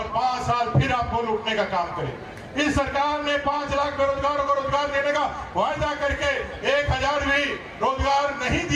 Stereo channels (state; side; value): identical; both; correlation 1.00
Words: 5 साल फिर आपको लूटने का काम करें। इस सरकार ने 5 लाख बेरोजगारों को रोजगार देने का वायदा करके 1,000 भी रोजगार नहीं